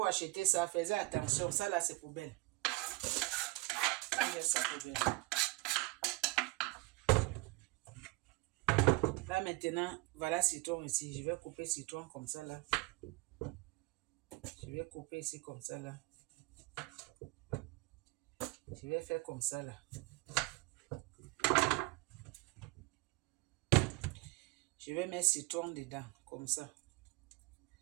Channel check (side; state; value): left; quieter; 23.5 dB